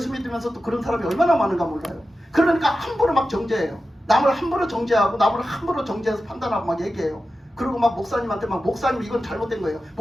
믿으면서 또 그런 사람이 얼마나 많은가 몰라요. 그러니까 함부로 막 정죄해요. 남을 함부로 정죄하고, 남을 함부로 정죄해서 판단하고 막 얘기해요. 그리고 막 목사님한테 목사님 이건 잘못된 거예요.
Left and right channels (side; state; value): both; normal; correlation 0.92